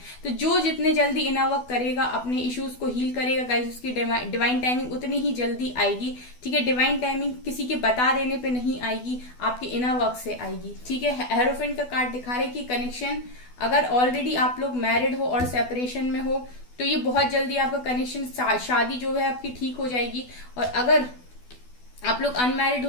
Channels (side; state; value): right; late; 12 ms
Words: तो जो जितने जल्दी इनर वर्क करेगा, अपने इश्यूज को हील करेगा गाइस, उसकी डिवाइन टाइमिंग उतनी ही जल्दी आएगी। ठीक है, डिवाइन टाइमिंग किसी के बता देने पे नहीं आएगी, आपके इनर वर्क से आएगी। ठीक है, हेरोफेंट का कार्ड दिखा रहे कि कनेक्शन, अगर ऑलरेडी आप लोग मैरिड हो और सेपरेशन में हो तो ये बहुत जल्दी आपका कनेक्शन, शादी जो है आपकी ठीक हो जाएगी। और अगर आप लोग अनमैरिड हो